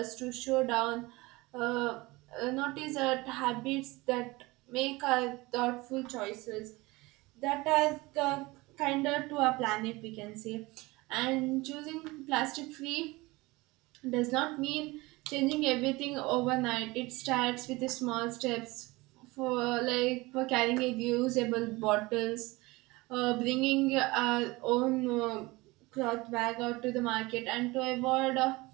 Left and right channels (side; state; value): left; quieter; 22.2 dB